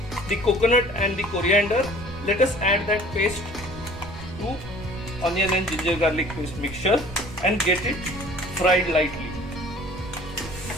the coconut and the coriander. Let us add that paste to onion and ginger garlic paste mixture and get it fried lightly.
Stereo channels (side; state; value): right; noise; rumble, 14 dB below the sound